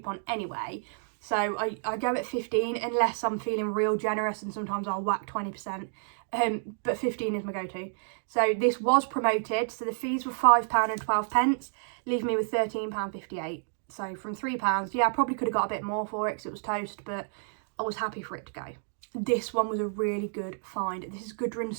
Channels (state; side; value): silent; left; digital silence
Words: anyway. So I go at 15 unless I'm feeling real generous, and sometimes I'll whack 20%. But 15 is my go-to. So this was promoted. So the fees were £5.12, leaving me with £13.58. So from £3, yeah, I probably could have got a bit more for it because it was toast, but I was happy for it to go. This one was a really good find. This is Gudrun